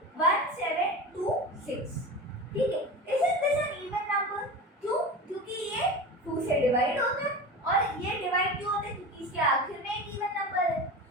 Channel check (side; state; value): both; normal; correlation 0.28